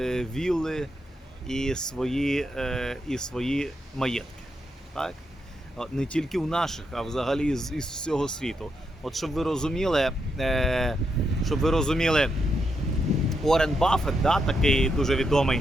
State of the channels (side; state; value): both; normal; correlation 0.81